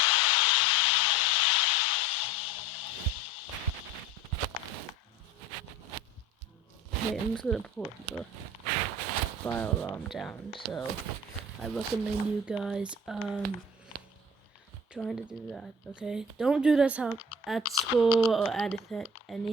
Okay, I'm just gonna put the fire alarm down. So I recommend you guys trying to do that. Okay, don't do this at school or at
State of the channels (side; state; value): both; normal; correlation 0.42